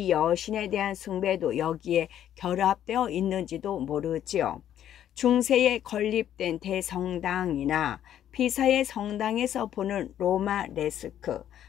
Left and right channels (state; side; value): quieter; right; 10.8 dB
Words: 여신에 대한 숭배도 여기에 결합되어 있는지도 모르지요. 중세에 건립된 대성당이나 피사의 성당에서 보는 로마 레스크,